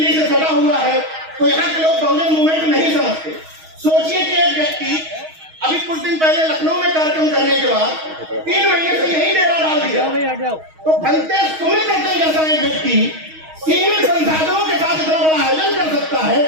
से सटा हुआ है, तो यहाँ के लोग बहुजन मूवमेंट नहीं समझते। सोचिए कि एक व्यक्ति अभी कुछ दिन पहले लखनऊ में कार्यक्रम करने के बाद 3 महीने से यही डेरा डाल दिया, तो भलते सुमित करते जैसा एक व्यक्ति सीमित संसाधनों के साथ इतना बड़ा आयोजन कर सकता है,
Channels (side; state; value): left; late; 6.3 ms